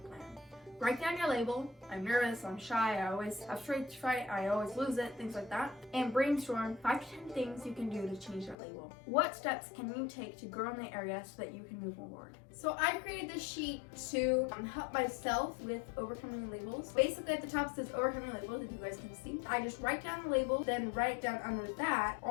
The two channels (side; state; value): right; drops out; at 8.6 s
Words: plan. Write down your label. I'm nervous, I'm shy, I always have stage fright, I always lose it, things like that. And brainstorm 5 to 10 things you can do to change your label. What steps can you take to grow in the area so that you can move forward? So I created this sheet to help myself with overcoming labels. Basically at the top says overcoming labels, if you guys can see. I just write down the label, then write down under that